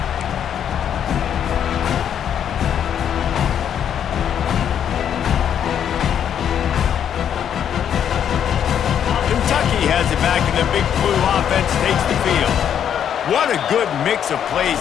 Has it back, and the big blue offense takes the field. What a good mix of plays,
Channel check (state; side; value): quieter; right; 9.1 dB